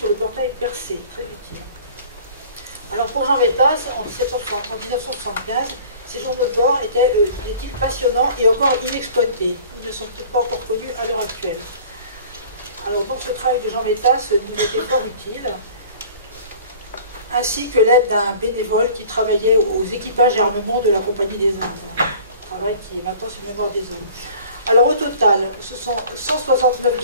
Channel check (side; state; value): both; inverted; correlation -0.47